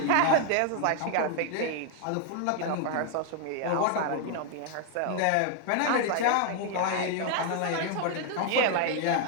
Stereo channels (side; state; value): both; different; correlation 0.00